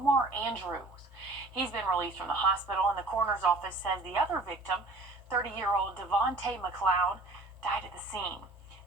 Andrews. He's been released from the hospital, and the coroner's office says the other victim, 30-year-old Devontae McLeod, died at the scene.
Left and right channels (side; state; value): left; quieter; 3.0 dB